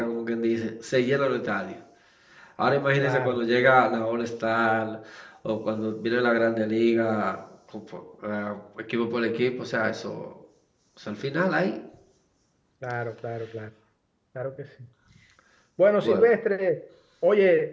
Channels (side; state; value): both; identical; correlation 1.00